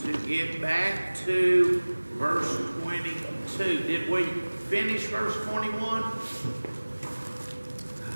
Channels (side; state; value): both; inverted; correlation -1.00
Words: to get back to verse 22. Did we finish verse 21?